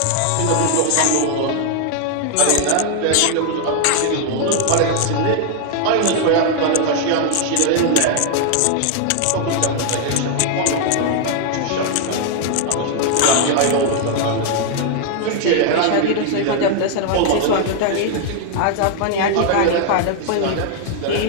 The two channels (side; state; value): both; different; correlation 0.00